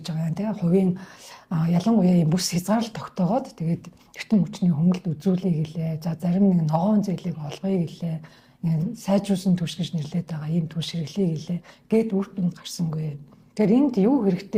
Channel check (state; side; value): identical; both; correlation 1.00